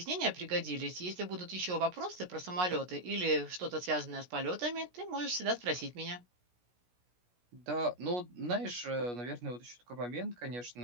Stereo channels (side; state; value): left; late; 17 ms